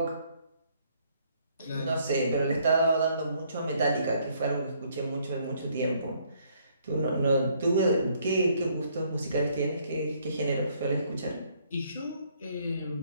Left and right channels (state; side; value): inverted; both; correlation -0.66